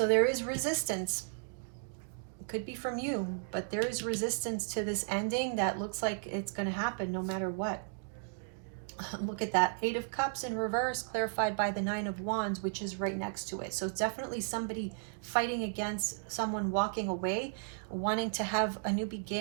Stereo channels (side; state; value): left; silent; digital silence